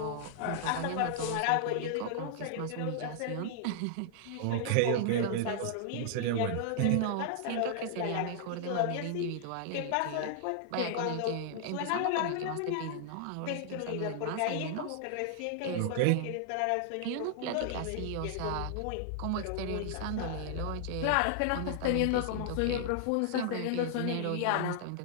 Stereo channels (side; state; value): both; different; correlation -0.01